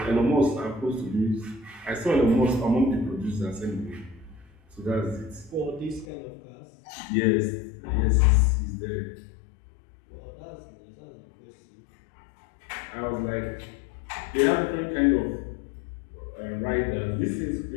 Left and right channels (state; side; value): drops out; right; at 6.1 s